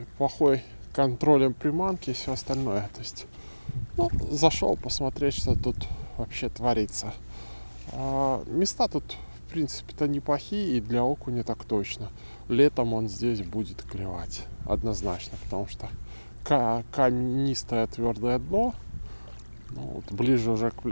контролем приманки и все остальное. То есть, зашел посмотреть, что тут вообще творится. Места тут, в принципе-то, неплохие, и для окуня так точно. Летом он здесь будет клевать, однозначно, потому что каменистое твердое дно. Вот, ближе уже к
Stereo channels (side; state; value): both; inverted; correlation -1.00